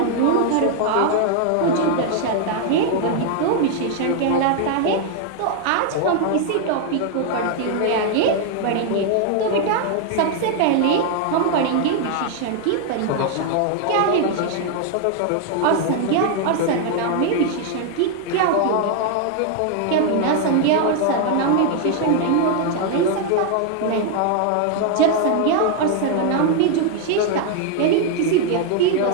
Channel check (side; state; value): both; different; correlation 0.00